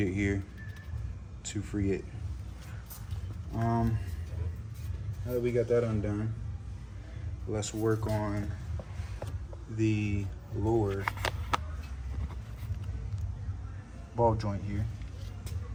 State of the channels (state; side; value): identical; both; correlation 1.00